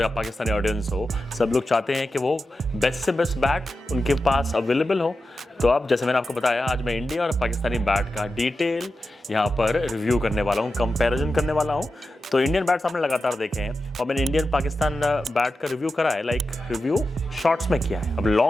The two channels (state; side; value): normal; both; correlation 0.91